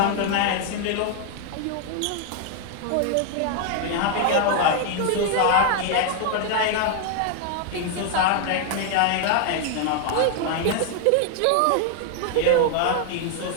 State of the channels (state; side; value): different; both; correlation 0.00